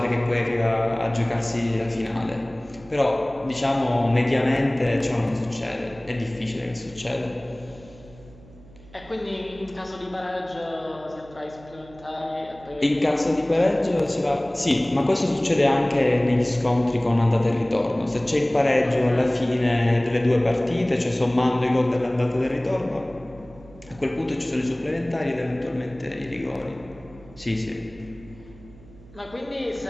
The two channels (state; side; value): noise; right; hum, 22 dB below the sound